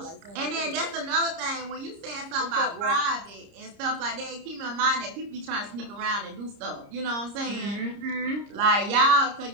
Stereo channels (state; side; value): late; left; 30 ms